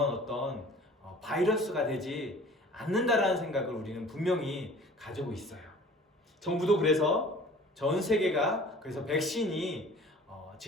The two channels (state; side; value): normal; both; correlation 0.47